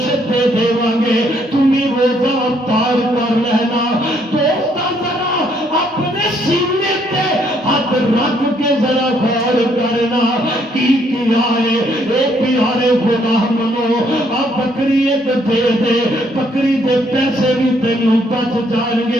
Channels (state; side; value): normal; both; correlation 0.69